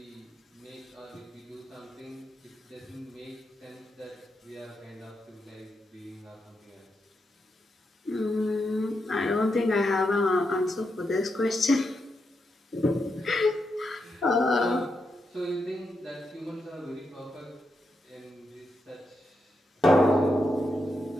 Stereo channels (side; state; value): both; normal; correlation 0.84